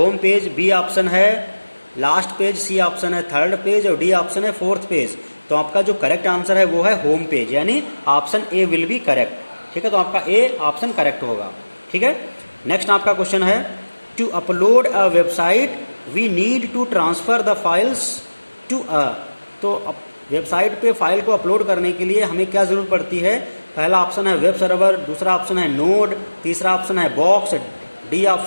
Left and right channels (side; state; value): both; inverted; correlation -1.00